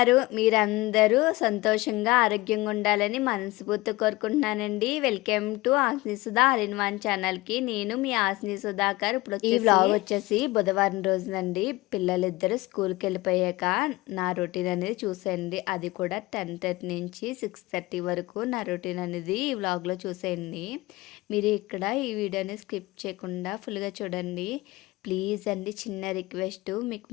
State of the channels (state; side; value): quieter; right; 20.4 dB